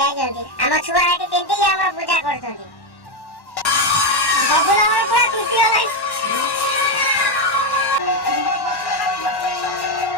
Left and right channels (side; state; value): right; late; 1.1 ms